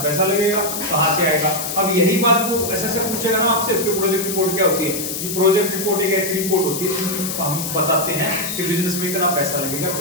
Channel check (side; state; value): left; noise; hiss, 4 dB below the sound